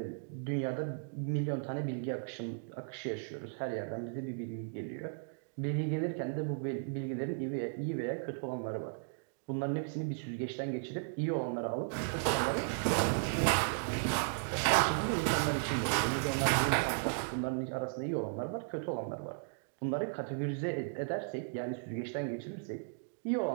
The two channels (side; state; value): left; silent; digital silence